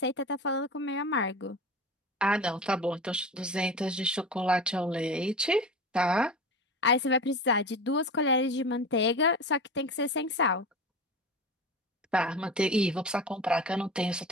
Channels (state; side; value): normal; both; correlation 0.30